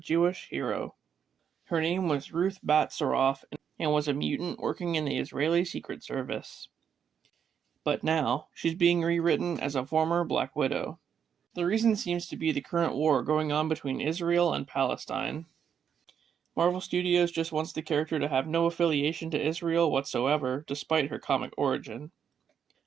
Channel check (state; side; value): quieter; left; 7.9 dB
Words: hero. Her name was Ruth Bat Saroff and was a mutant working in the Israeli Secret Service. But now, she's being rewritten as a former Black Widow. The reason seems to be the current war going on between Israel and Palestine. Marvel Studios just wants the character to have no affiliation to Israel whatsoever, despite her comic origin.